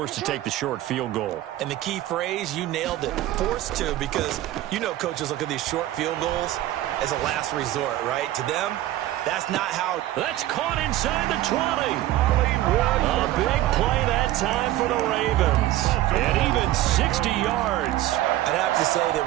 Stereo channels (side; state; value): left; quieter; 14.7 dB